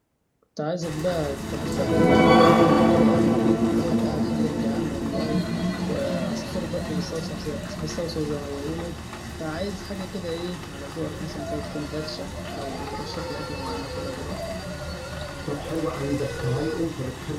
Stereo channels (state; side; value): identical; both; correlation 1.00